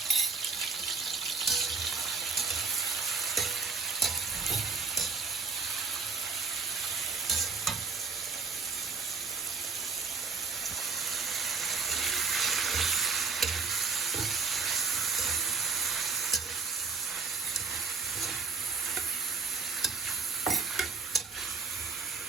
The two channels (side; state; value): left; quieter; 4.7 dB